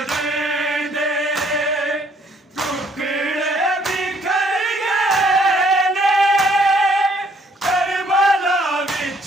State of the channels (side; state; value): both; normal; correlation 0.64